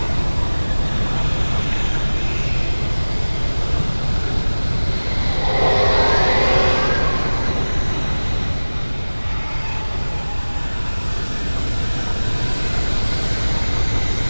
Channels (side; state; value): both; inverted; correlation -1.00